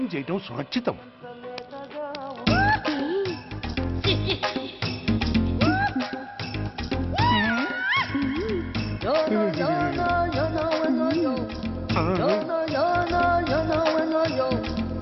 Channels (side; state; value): both; identical; correlation 1.00